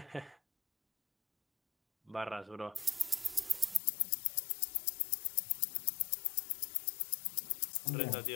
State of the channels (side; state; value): right; drops out; at 3.8 s